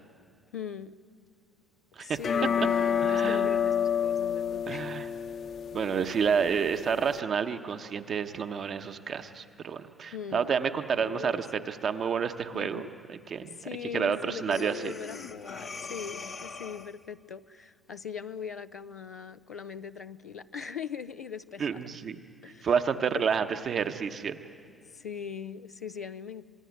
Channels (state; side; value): normal; both; correlation 0.67